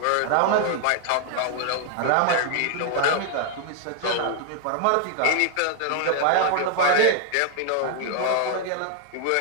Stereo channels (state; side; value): different; both; correlation 0.00